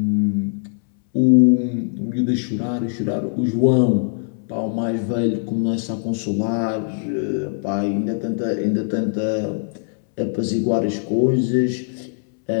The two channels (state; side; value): silent; right; 65 dB below the other